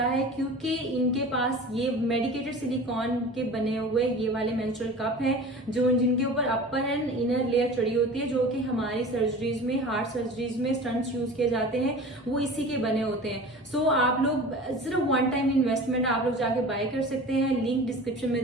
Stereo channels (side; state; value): both; normal; correlation 0.38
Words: है क्योंकि इनके पास ये मेडिकेटेड सिलिकॉन के बने हुए ये वाले मेंस्ट्रुअल कप हैं जो जिनके ऊपर अपर एंड इनर लेयर चढ़ी होती है, जो कि हमारी सर्जरीज में, हार्ट सर्जरीज में स्टंट्स यूज किए जाते हैं, वो इसी के बने होते हैं। सो आप लोग सिर्फ वन टाइम इन्वेस्टमेंट आप लोग जाके बाय कर सकते हैं, लिंक डिस्क्रिप्शन में